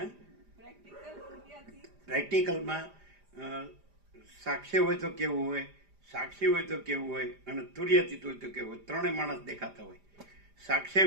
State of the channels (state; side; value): late; left; 5.0 ms